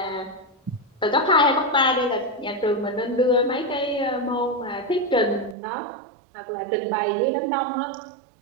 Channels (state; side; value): drops out; left; at 5.6 s